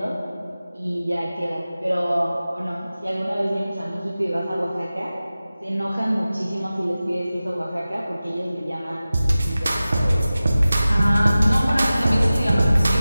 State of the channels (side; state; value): both; inverted; correlation -0.96